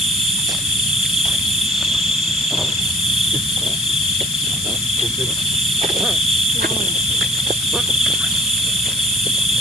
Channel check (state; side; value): noise; left; hiss, 8 dB below the sound